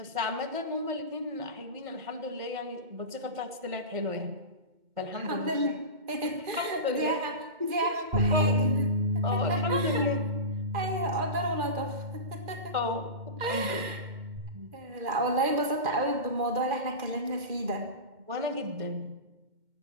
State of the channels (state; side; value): late; left; 2.1 ms